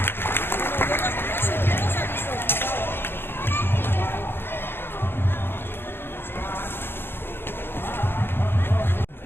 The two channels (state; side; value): late; right; 0.10 ms